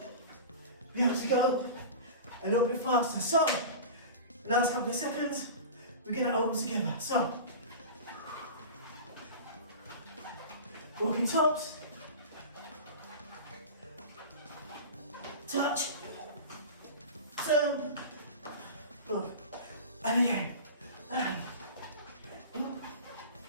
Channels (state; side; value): inverted; both; correlation -0.32